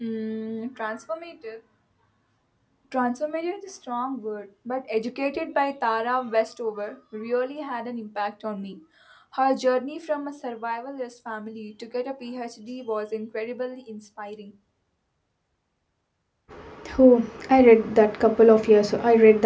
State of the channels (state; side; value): identical; both; correlation 1.00